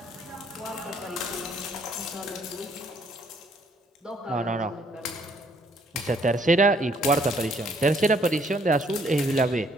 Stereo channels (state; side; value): normal; both; correlation 0.66